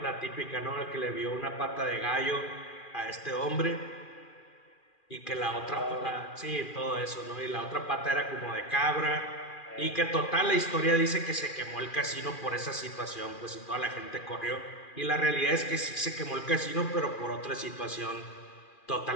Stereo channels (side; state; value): right; late; 2.4 ms